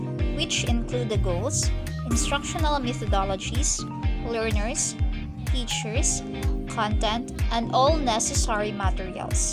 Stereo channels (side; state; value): both; identical; correlation 1.00